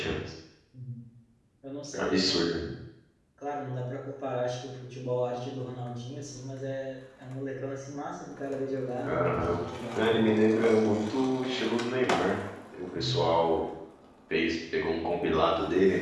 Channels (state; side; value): identical; both; correlation 1.00